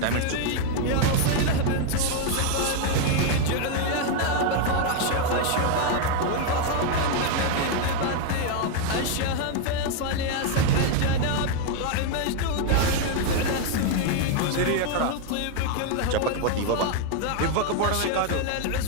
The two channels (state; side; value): different; both; correlation 0.01